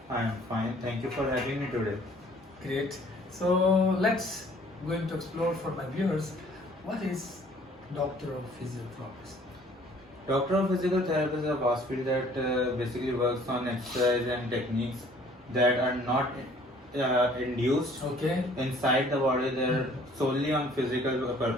I am fine. Thank you for having me today. Great. So let's going to explore for my viewers what is doctor of physiotherapist. Doctor of Physical Therapy is a vast field that basically works on exercise and techniques that are not induced Okay. inside the body. They're solely on physical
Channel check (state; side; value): normal; both; correlation 0.56